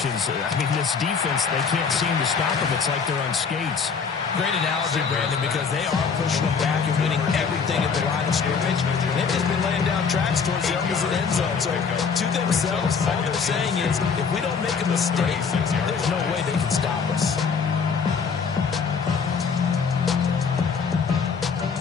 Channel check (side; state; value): right; quieter; 5.8 dB